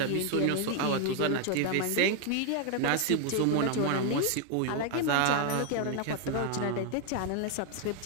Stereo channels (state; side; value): different; both; correlation 0.01